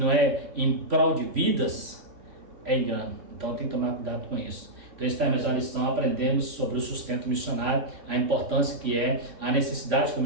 é em prol de vidas, é engano. Então, tem que tomar cuidado com isso. Então, esta é a mesma lição, aprendemos sobre o sustento missionário, a importância que é, a necessidade que o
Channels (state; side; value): late; left; 3.2 ms